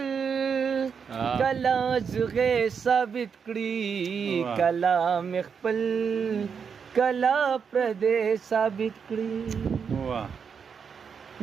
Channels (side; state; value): left; quieter; 6.5 dB